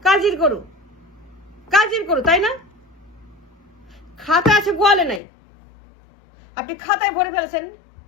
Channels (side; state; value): right; drops out; at 5.2 s